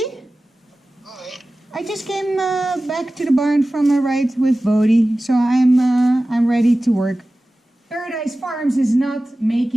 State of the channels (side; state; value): both; normal; correlation 0.96